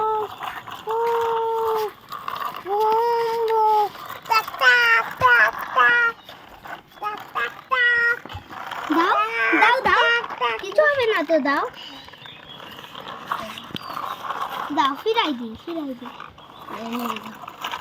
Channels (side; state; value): both; identical; correlation 1.00